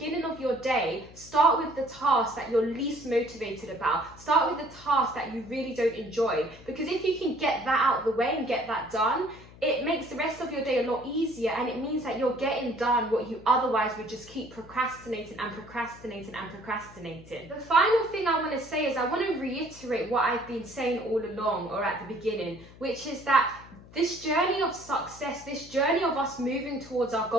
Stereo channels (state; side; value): noise; left; hum, 20 dB below the sound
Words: of your day, start with the task that you're least motivated about. Start with the task that you really don't enjoy. Because if you can get that out of the way and get that done, it makes the rest of your day a lot easier, and it means that you're getting done what you otherwise would just keep procrastinating and procrastinating and procrastinating. The final thing I want to say is I want to reiterate what I've been saying all along, or at the beginning, which is that this journey of success, this journey of us moving towards our